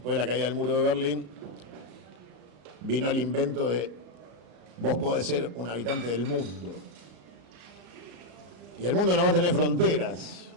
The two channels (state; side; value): late; left; 34 ms